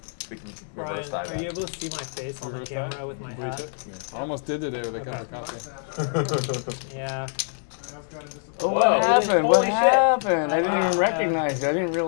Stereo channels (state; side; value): silent; right; 61 dB below the other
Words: We can Brian, reverse that. are you able to see my face on the Reverse camera that? with my Bleach hat? it? I almost did today with a cup of coffee. Yeah. Oh, Whoa. what happened? What Holy shit. happened? I didn't even Wow. recognize you. I didn't